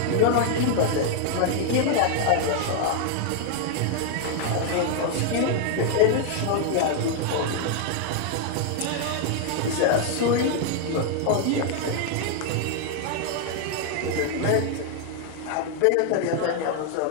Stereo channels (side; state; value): both; different; correlation 0.00